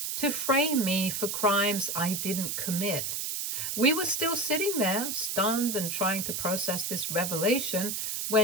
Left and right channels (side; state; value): right; noise; hiss, 2 dB below the sound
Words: to frame me for crimes I didn't commit. We were still sitting there, stunned and trying to process this revelation,